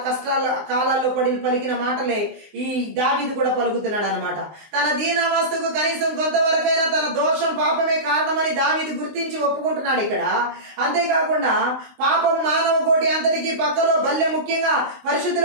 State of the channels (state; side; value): late; left; 19 ms